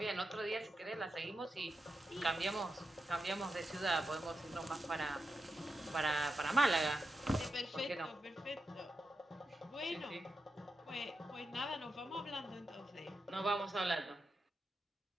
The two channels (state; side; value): normal; both; correlation 0.88